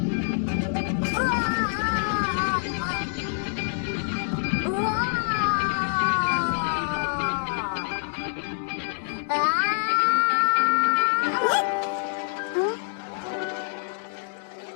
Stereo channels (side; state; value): right; silent; digital silence